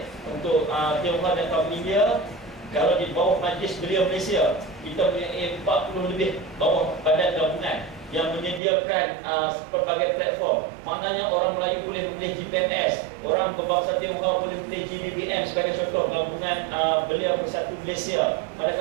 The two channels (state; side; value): drops out; left; at 8.6 s